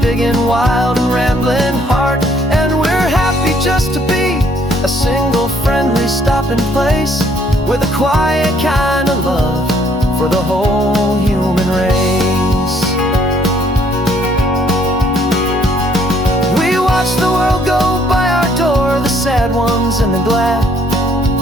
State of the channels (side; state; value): both; normal; correlation 0.64